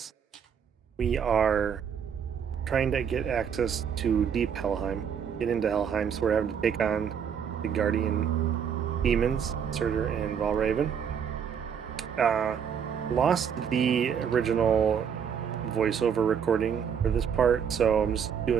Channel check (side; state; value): left; quieter; 7.6 dB